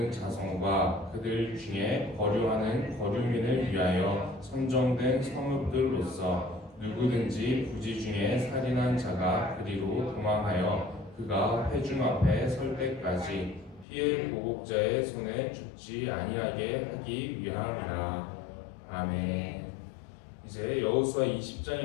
자손과 그들 중에 거류하는 거류민을 위하여 선정된 성읍들로서 누구든지 부지 중에 살인한 자가 그리로 도망하여 그가 회중 앞에 설 때까지 피해 보복자의 손에 죽지 아니하게 하기 위함이라. 아멘. 이제 여호수아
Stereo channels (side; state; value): right; drops out; at 13.9 s